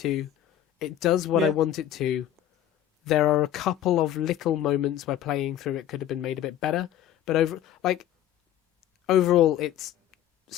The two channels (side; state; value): right; quieter; 11.3 dB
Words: It does what I want it to. There are a couple of little moments where playing through it could have been made a bit better, but overall, it's